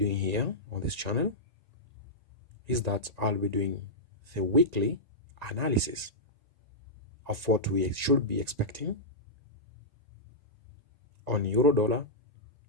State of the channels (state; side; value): late; left; 1.9 ms